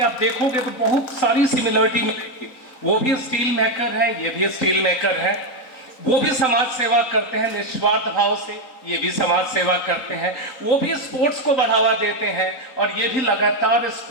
आप देखोगे तो बहुत सारी सिमिलरिटी मिलेगी. वो भी स्टील मेकर है, ये भी स्टील मेकर है. वो भी समाज सेवा करते हैं निस्वार्थ भाव से, ये भी समाज सेवा करते हैं. वो भी स्पोर्ट्स को बढ़ावा देते हैं, और ये भी लगातार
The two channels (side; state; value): right; late; 4.0 ms